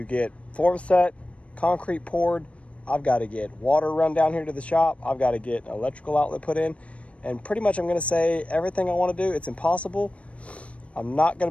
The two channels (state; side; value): late; right; 0.063 ms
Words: get form set, concrete poured. I've got to get water run down here to the shop. I've got to get an electrical outlet put in. And pretty much I'm going to say everything I want to do. It's impossible. I'm not